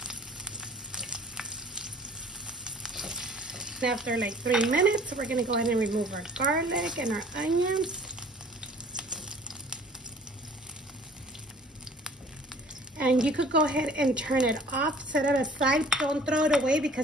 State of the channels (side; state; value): both; normal; correlation 0.51